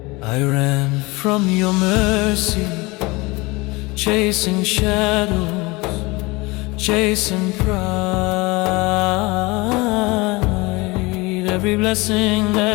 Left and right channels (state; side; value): quieter; right; 24.0 dB